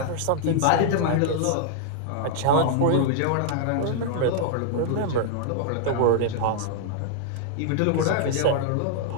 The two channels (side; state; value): both; different; correlation -0.01